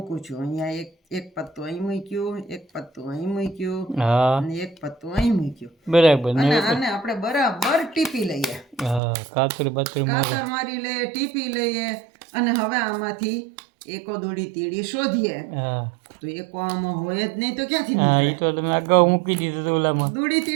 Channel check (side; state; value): left; drops out; at 9.0 s